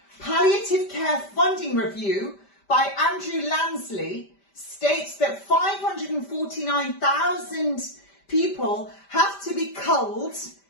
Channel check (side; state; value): right; late; 5.1 ms